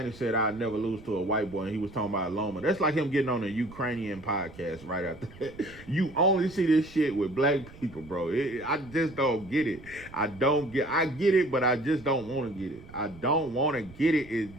said, I'll never lose to a white boy, and he was talking about Loma. That's like him getting on a Ukrainian podcast right after that. You only see this shit with black people, bro. I just don't get it. I get it, but I just don't want to get it. I don't want to get it. It's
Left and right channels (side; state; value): right; noise; rumble, 20 dB below the sound